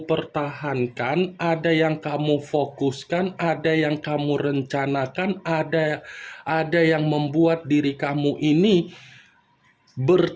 pertahankan, ada yang kamu fokuskan, ada yang kamu rencanakan, ada yang membuat diri kamu ini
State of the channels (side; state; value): both; identical; correlation 1.00